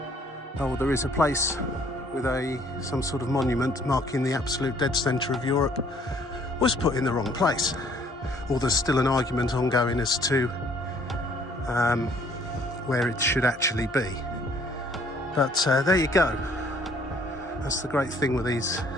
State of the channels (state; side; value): normal; both; correlation 0.60